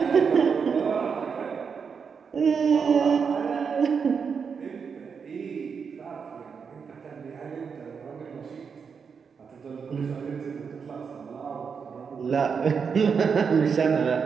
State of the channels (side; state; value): left; quieter; 6.1 dB